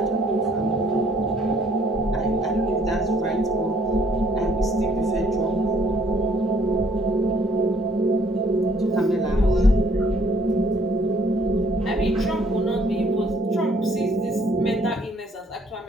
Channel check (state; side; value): normal; both; correlation 0.63